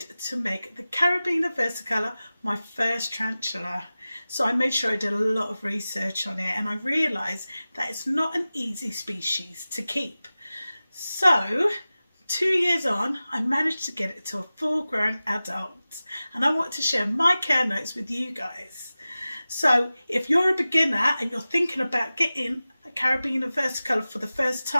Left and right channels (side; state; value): both; inverted; correlation -0.96